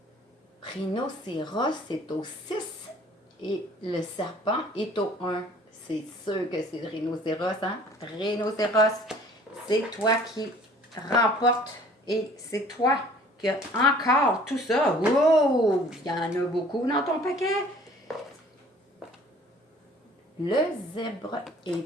Rhinocéros, c'est au 6 et le serpent est au 1. C'est sûr que c'est le rhinocéros, hein? Rhinocéros, c'est toi qui remporte et c'est toi qui as encore tout ça. Wow! Il y en a beaucoup dans ton paquet. Le zèbre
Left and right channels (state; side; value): normal; both; correlation 0.52